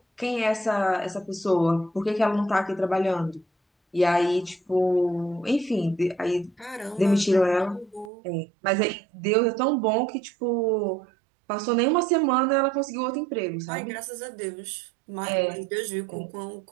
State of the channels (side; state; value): left; drops out; at 8.1 s